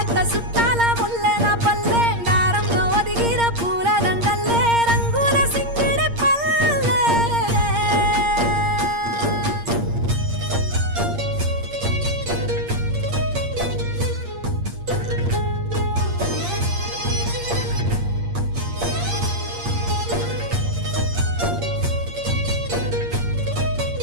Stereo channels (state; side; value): late; left; 8.6 ms